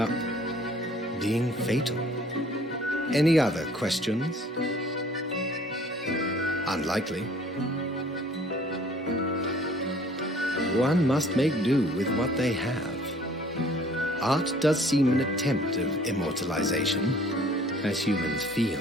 being fatal. Any other questions? Unlikely. One must make do with what they have. Art does seem an attempt of immortalization, as humans feel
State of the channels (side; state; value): both; normal; correlation 0.55